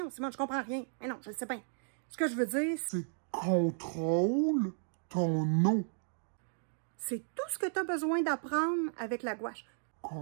Simone, je comprends rien. Mais non, je le sais bien. Ce que je veux dire, c'est contrôle ton eau. C'est tout ce que tu as besoin d'apprendre avec la gouache.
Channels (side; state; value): left; silent; digital silence